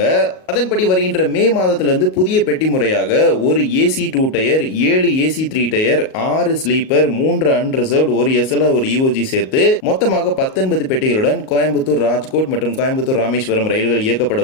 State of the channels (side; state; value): right; late; 38 ms